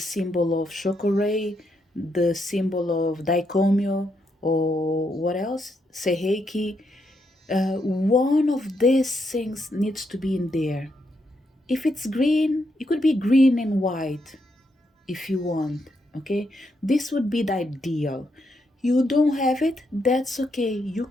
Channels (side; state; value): both; normal; correlation 0.79